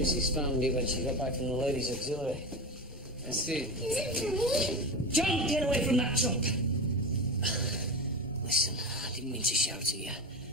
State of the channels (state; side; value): normal; both; correlation 0.22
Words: found it when she got back from the ladies' auxiliary. I see. Is it for me? John, get away from that chump! Listen, I didn't mean to shout at you,